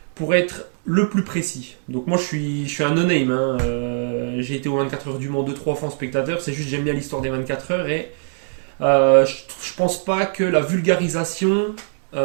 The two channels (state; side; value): silent; left; digital silence